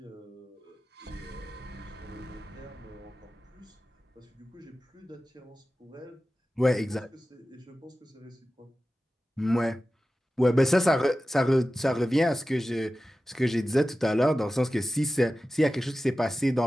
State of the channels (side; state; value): both; normal; correlation 0.95